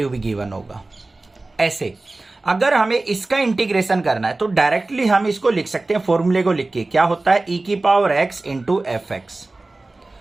भी गिवन होगा। ऐसे अगर हमें इसका इंटीग्रेशन करना है तो डायरेक्टली हम इसको लिख सकते हैं, फॉर्मूले को लिख के, क्या होता है e की पावर x इंटू fx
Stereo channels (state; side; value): quieter; left; 3.1 dB